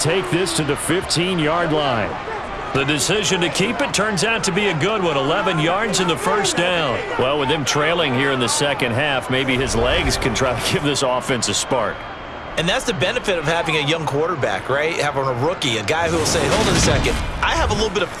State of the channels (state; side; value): identical; both; correlation 1.00